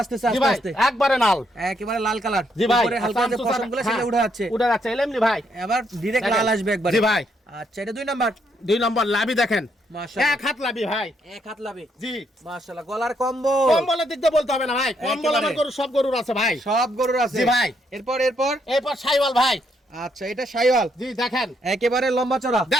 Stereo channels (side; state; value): both; normal; correlation 0.75